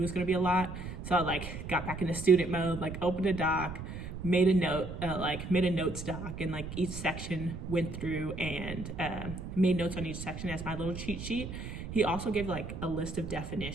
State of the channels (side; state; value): right; noise; rumble, 8 dB below the sound